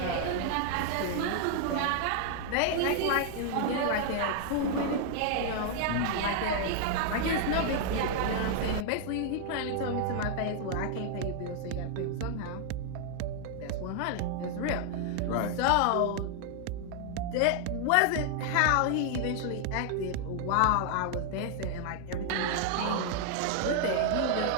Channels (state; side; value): different; both; correlation 0.00